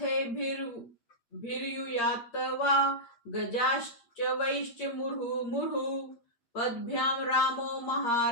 वा गजाश्च वैश्च मुहुः मुहुः पद्भ्यां रामो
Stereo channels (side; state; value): right; late; 8.6 ms